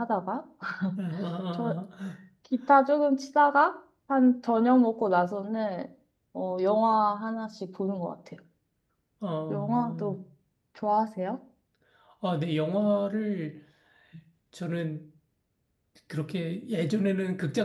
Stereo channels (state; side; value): identical; both; correlation 1.00